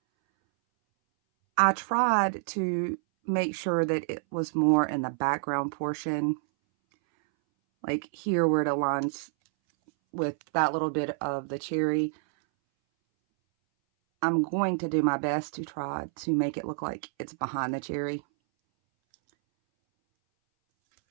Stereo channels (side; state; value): left; silent; 59 dB below the other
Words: I tried to make sure that it was more in the background portion, like here where it aligns with that little bit of the cherry. I'm going to do my best to try to make it look like it's behind the cherry.